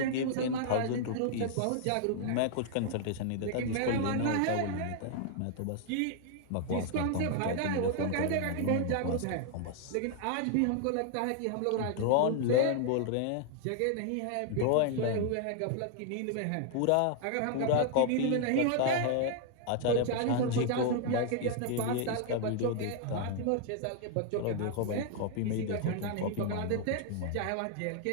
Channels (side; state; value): both; different; correlation 0.00